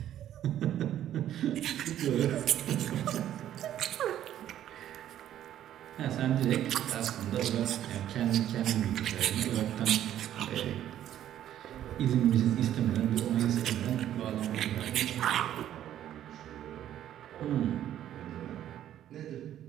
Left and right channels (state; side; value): quieter; left; 11.5 dB